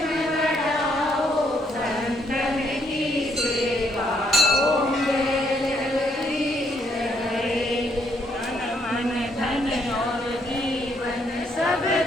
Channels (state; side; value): normal; both; correlation 0.72